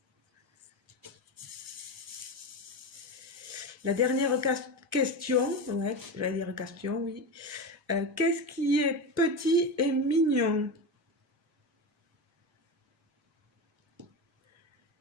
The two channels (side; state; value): both; normal; correlation 0.20